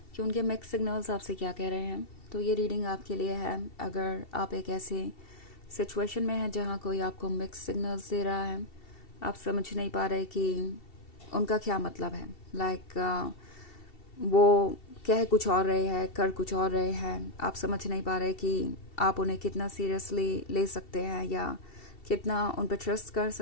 कि उनके मिक्स सिग्नल्स आपसे क्या कह रहे हैं। तो ये रीडिंग आपके लिए है अगर आप एक ऐसे सिचुएशन में हैं जहाँ कोई आपको मिक्स सिग्नल्स दे रहा है, आप समझ नहीं पा रहे कि उनका क्या मतलब है। लाइक वो कह कुछ और रहे हैं, कर कुछ और रहे हैं, आप समझ नहीं पा रहे कि आप उन्हें कितना सीरियसली ले सकते हैं या कितना उन पर ट्रस्ट कर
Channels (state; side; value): late; right; 2.7 ms